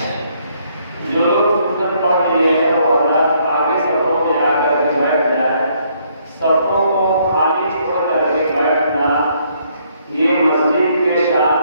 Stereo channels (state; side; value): inverted; both; correlation -0.69